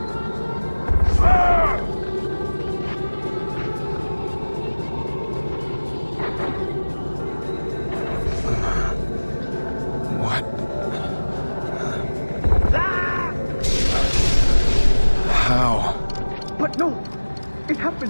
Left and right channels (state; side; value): inverted; both; correlation -1.00